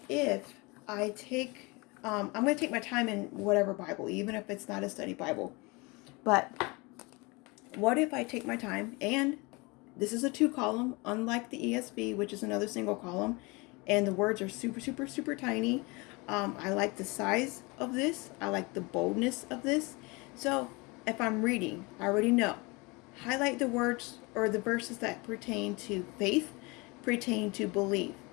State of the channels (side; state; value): right; quieter; 26.5 dB